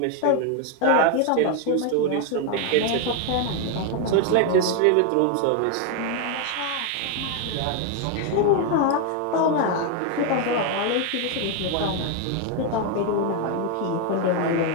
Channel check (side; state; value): both; different; correlation 0.01